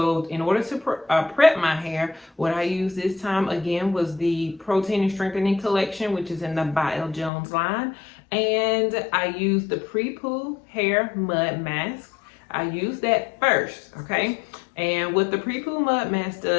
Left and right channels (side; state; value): right; drops out; at 7.3 s